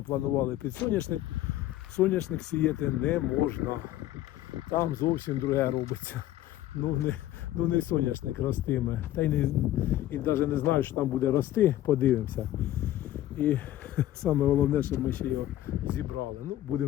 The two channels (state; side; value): quieter; right; 13.9 dB